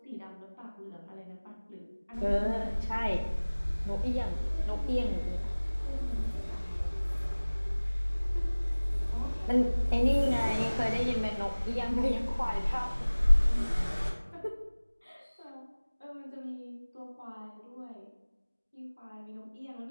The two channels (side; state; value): both; inverted; correlation -1.00